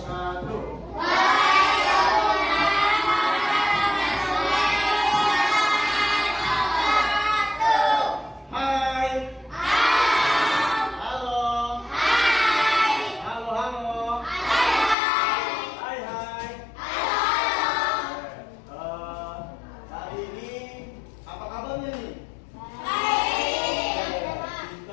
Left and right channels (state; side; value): drops out; right; at 15.0 s